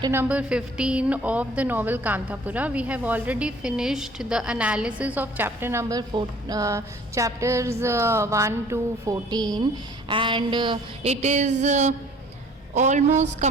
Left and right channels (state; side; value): normal; both; correlation 0.53